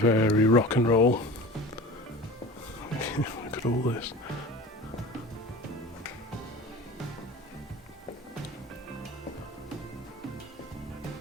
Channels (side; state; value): both; normal; correlation 0.36